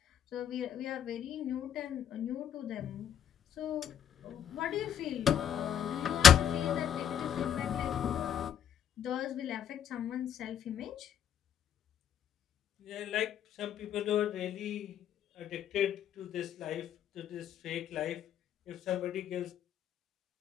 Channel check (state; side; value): quieter; right; 9.1 dB